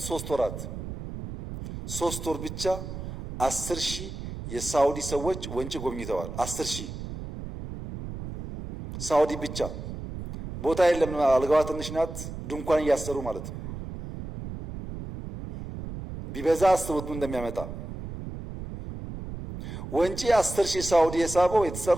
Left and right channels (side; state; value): right; noise; rumble, 9 dB below the sound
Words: 3 ወራት 3 ወር ብቻ 10,000 የሳውዲ ሰዎች ወንጪ ጎብኝተዋል። 10,000 ሳውዲ ብቻ። ቦታ የለም፣ አልጋዋ ትንሽ ናት። ድንኳን እያሰሩ ማለት ነው። ቢበዛ አስቡት ምን እንደሚያመጣ። ወንጪ 10,000 ሳውዲ የሳበው